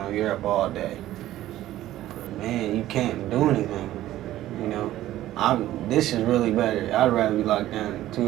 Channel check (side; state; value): left; quieter; 14.2 dB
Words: you're up all day. But man, you can't do anything. This is really better. I'd rather be locked down